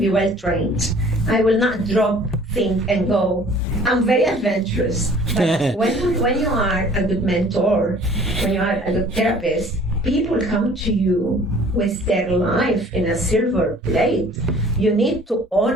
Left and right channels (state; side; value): normal; both; correlation 0.51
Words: well trained. I will not drop, think, and go. I'm very adventurous. But when you are a good mentor, when you are a good therapist, people come to you with their life in a silver plate. You need to